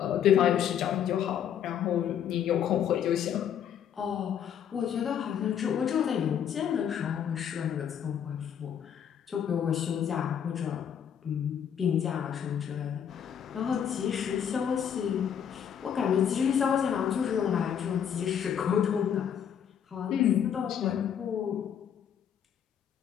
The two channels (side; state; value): right; quieter; 8.8 dB